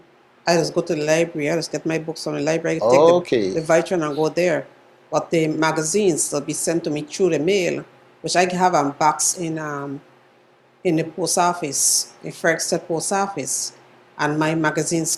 I just go to the library. I just get my books from the library. Take Okay. the Vitran and go there. But the magazines will be sent to me through the mail, which I have a box in in the post office, the Frexted post office, and my magazines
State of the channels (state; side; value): identical; both; correlation 1.00